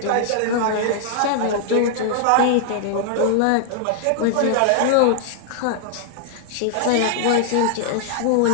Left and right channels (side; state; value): both; different; correlation -0.01